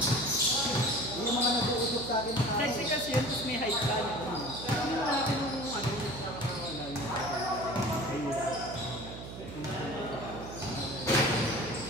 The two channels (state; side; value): noise; right; hum, 10 dB below the sound